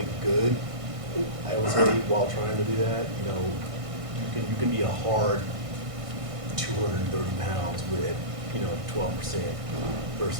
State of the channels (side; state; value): left; late; 1.6 ms